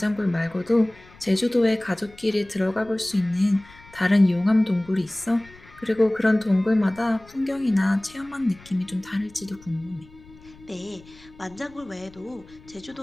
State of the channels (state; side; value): noise; left; rumble, 24 dB below the sound